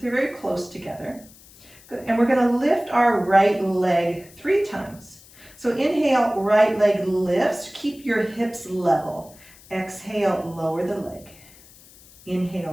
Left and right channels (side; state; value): left; noise; hiss, 24 dB below the sound